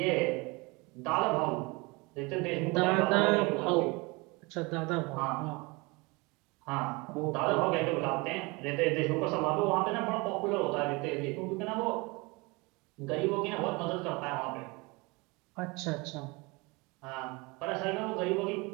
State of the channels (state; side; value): quieter; left; 26.1 dB